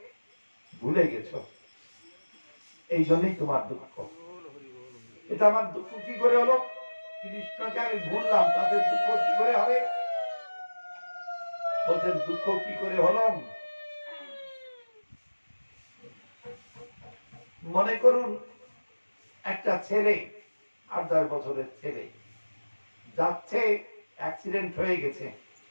ভুলে গেছো, এই জন্যই তোমার দুঃখ। এটা আমার দুঃখ কি করে হলো? কৃষ্ণকে আমি ভুললাম, তাদের দুঃখ কি করে হবে? বলছেন দুঃখ কি করে হলো? মনে করুন একটা ছেলে 8-10 বছরের ছেলে যাচ্ছে, অ্যাক্সিডেন্ট হয়ে গেছে,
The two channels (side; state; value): both; inverted; correlation -1.00